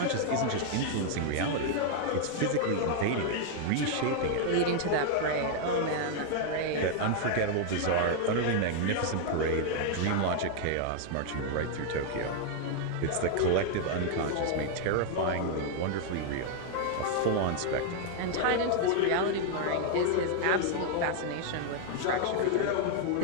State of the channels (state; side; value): different; both; correlation 0.00